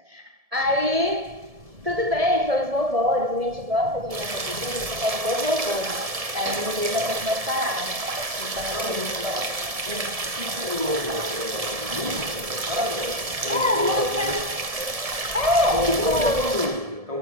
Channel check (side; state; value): left; late; 1.7 ms